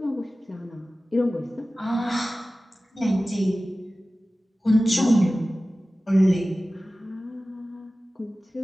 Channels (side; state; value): both; normal; correlation 0.96